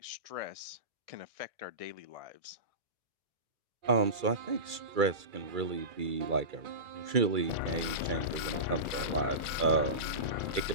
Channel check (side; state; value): left; late; 2.3 ms